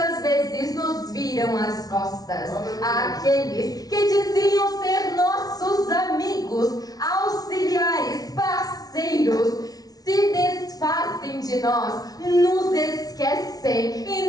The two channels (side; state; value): right; late; 0.18 ms